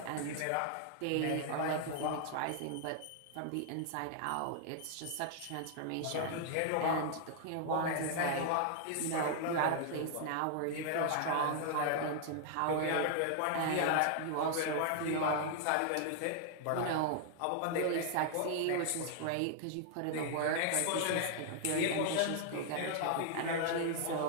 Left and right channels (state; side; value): different; both; correlation 0.00